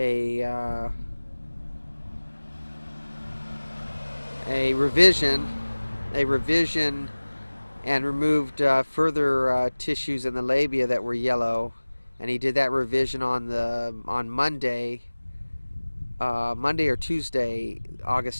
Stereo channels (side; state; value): both; inverted; correlation -1.00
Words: revision and removed further tissues in the labia that were yellow, and he did that revision on Monday or Tuesday,